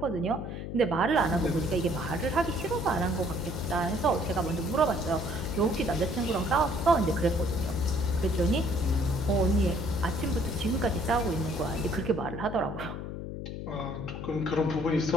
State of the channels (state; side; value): noise; left; hum, 7 dB below the sound